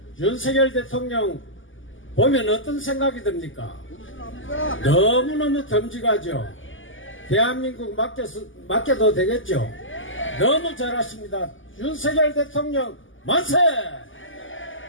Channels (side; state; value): right; late; 0.57 ms